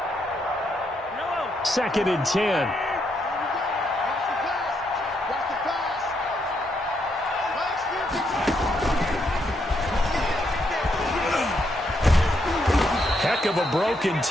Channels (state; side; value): normal; both; correlation 0.77